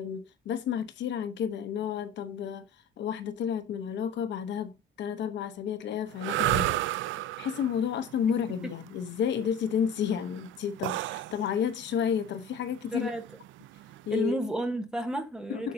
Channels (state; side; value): quieter; right; 3.0 dB